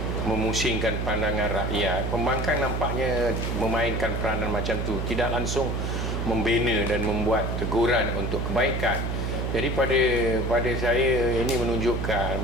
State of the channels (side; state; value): right; noise; hum, 1 dB below the sound